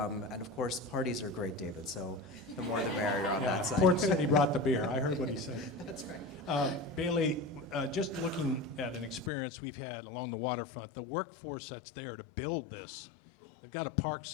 and of course, parties are great, David, so the more the merrier on that side. Port City brought the beer. I heard what he said. That's right. Bailey, just looking at an experience we've had along the waterfront, the workforce that's there to build this, they've got to park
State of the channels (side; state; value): right; drops out; at 9.3 s